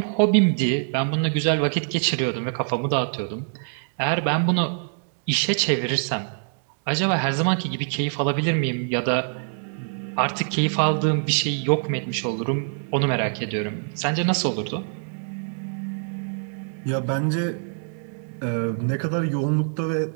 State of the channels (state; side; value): silent; left; 62 dB below the other